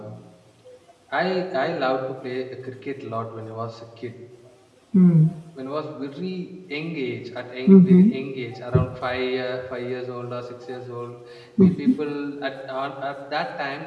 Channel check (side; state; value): both; identical; correlation 1.00